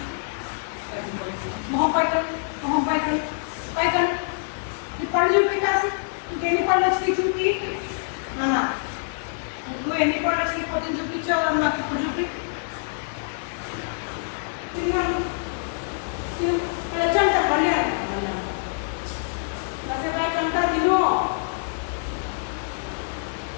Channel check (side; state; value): right; silent; digital silence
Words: మొహం పైకలు, మొహం పైకలు, పైకలు. ఈ పళ్ళు చూపి కాసి, ఇంకెన్ని పళ్ళు వచ్చినాయి చూపి. నువ్వు ఎన్ని పళ్ళు వచ్చినాయి పొద్దున్న చూపించావు నాకు ఇప్పుడు చూపి. తిన్నాను వచ్చంట మళ్ళీ అంతా తిను.